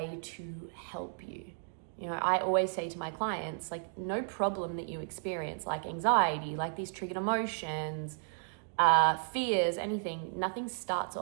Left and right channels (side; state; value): left; silent; digital silence